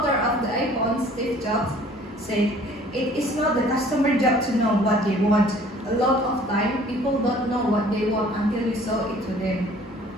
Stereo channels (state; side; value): normal; both; correlation 0.53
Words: of the iPhone, Steve Jobs, said, it is not the customer job to know what they want. A lot of time, people don't know what they want until you show it to them.